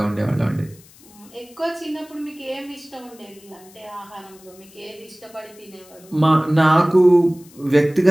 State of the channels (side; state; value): left; noise; hiss, 25 dB below the sound